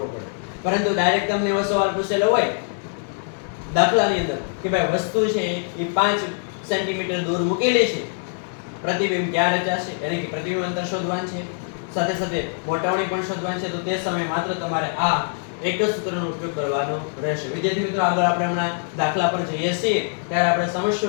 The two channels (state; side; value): silent; right; digital silence